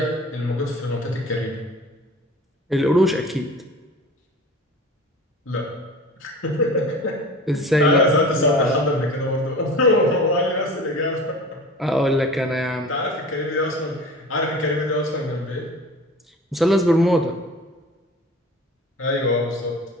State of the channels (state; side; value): normal; both; correlation 0.39